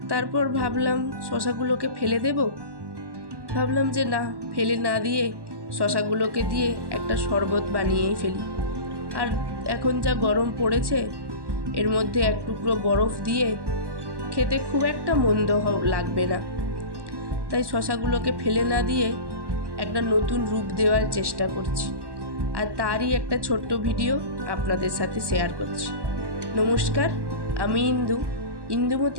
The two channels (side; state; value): left; late; 1.1 ms